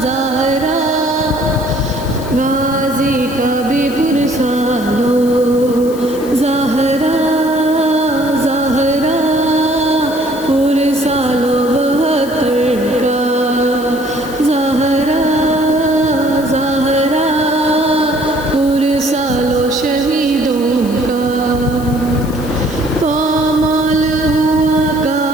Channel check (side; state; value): left; noise; hiss, 18 dB below the sound